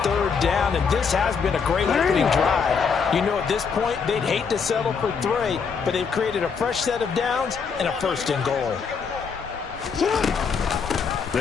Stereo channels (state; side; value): quieter; right; 5.9 dB